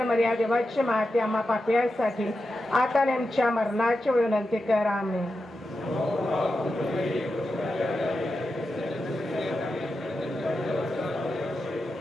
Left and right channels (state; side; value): normal; both; correlation 0.90